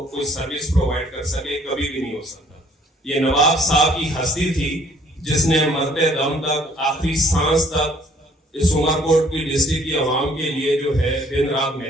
کوئی سروس پرووائڈ کر سکے؟ کبھی بھی نہیں ہو سکتا. یہ نواب صاحب کی ہستی تھی جس نے مرتے دم تک، آخری سانس تک اس عمر کوٹ کی ڈسٹرکٹ کی عوام کے لیے جو ہے دن رات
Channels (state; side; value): normal; both; correlation 0.60